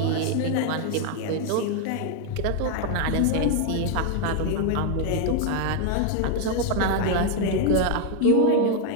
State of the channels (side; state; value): both; different; correlation 0.00